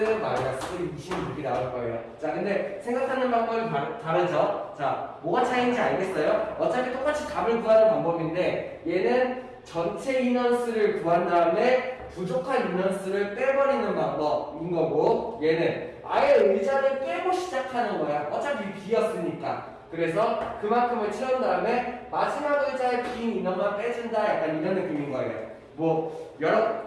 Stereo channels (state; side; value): identical; both; correlation 1.00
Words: 나올 거예요. 자, 근데 생각하는 방법이 다르죠? 자, 뭐가 차이인지 알겠어요? 어차피 똑같이 답을 구하는 방법인데 얘는 전체 인원수를 구한 다음에 부족한 인원수를 빼버리는 방법인 거고 얘는 아예 의자를 빼고 시작하는 거야. 어차피 비었으니까. 그래서 그만큼을 채운 다음에 마지막 의자에 빈 인원만 빼준다. 약간 이런 느낌인 거예요. 뭐